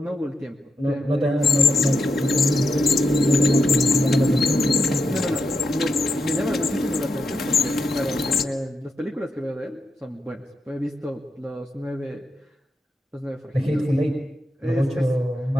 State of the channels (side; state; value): both; normal; correlation 0.85